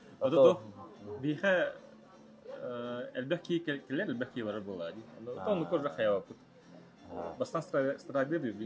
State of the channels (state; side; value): identical; both; correlation 1.00